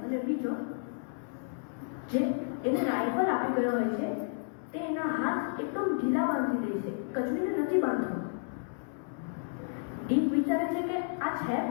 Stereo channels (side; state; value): right; silent; 57 dB below the other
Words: અને બીજો જે એને રાઇફલ આપી ગયો હોય છે તે એના હાથ એકદમ ઢીલા બાંધી દે છે, કચવીને નથી બાંધતો. ડીક વિચારે છે કે આ છે